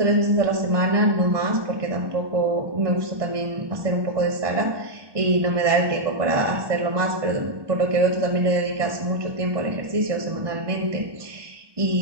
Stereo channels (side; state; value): left; late; 1.2 ms